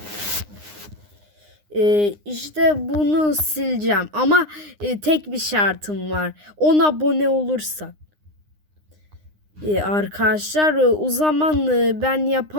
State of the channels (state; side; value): late; left; 9.8 ms